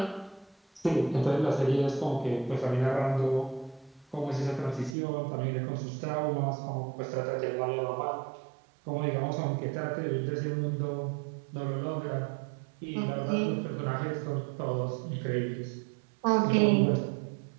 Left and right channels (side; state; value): left; drops out; at 5.0 s